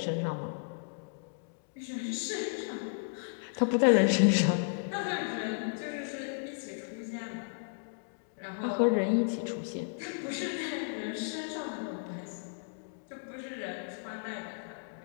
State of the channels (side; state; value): right; silent; digital silence